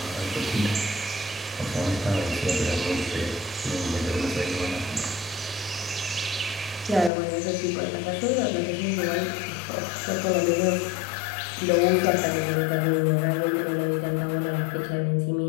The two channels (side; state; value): right; drops out; at 7.1 s